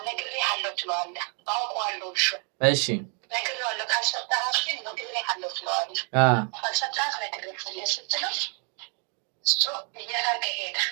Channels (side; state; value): left; quieter; 39.3 dB